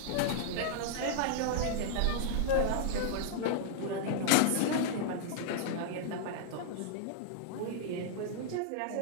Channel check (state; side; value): different; both; correlation -0.01